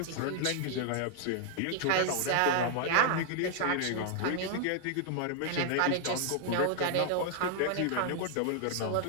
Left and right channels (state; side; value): different; both; correlation 0.00